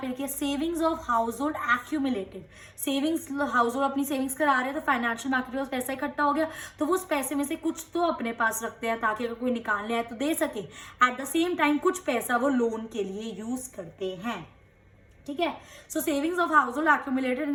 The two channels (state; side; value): identical; both; correlation 1.00